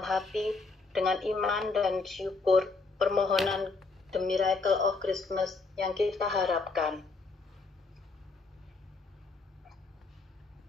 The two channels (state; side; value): quieter; right; 3.9 dB